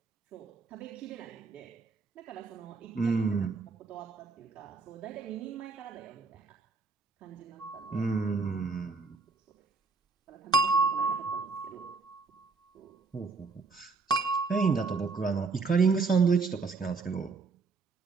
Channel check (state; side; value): quieter; left; 4.4 dB